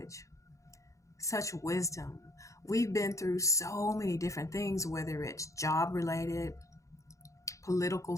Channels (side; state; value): right; late; 0.15 ms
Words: such wisdom. We've been through so many different things, whether it's job related, political